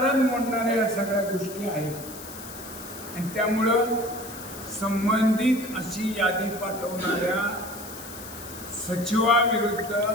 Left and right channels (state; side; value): noise; left; hiss, 14 dB below the sound